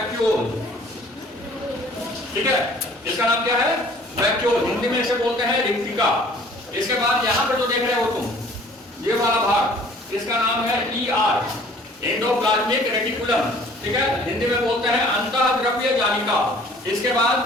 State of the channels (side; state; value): both; normal; correlation 0.53